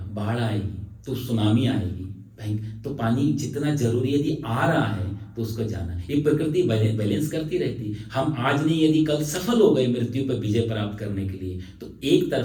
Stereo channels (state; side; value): identical; both; correlation 1.00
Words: बाढ़ आएगी, तो सुनामी आएगी। तो पानी जितना जरूरी यदि आ रहा है तो उसको जाना। ये प्रकृति बैलेंस करती रहती। हम आज नहीं यदि कल सफल हो गए मृत्यु पर विजय प्राप्त करने के लिए, तो एक